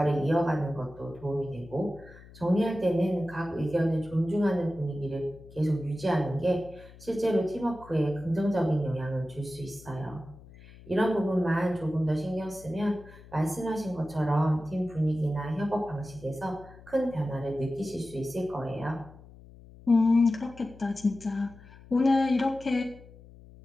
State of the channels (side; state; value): left; noise; hum, 20 dB below the sound